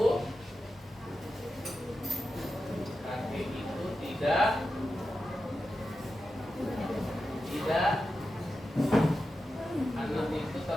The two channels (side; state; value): both; normal; correlation 0.90